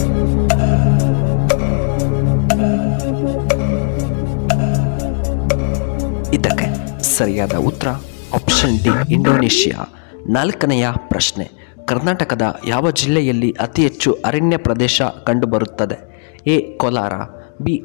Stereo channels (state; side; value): silent; right; 69 dB below the other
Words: ಇದಕ್ಕೆ ಸರಿಯಾದ ಉತ್ತರ ಆಪ್ಷನ್ ಡಿ ಇಂಡೋನೇಷಿಯಾ. ನಾಲ್ಕನೆಯ ಪ್ರಶ್ನೆ, ಕರ್ನಾಟಕದ ಯಾವ ಜಿಲ್ಲೆಯಲ್ಲಿ ಅತಿ ಹೆಚ್ಚು ಅರಣ್ಯ ಪ್ರದೇಶ ಕಂಡುಬರುತ್ತದೆ? A Kolar, B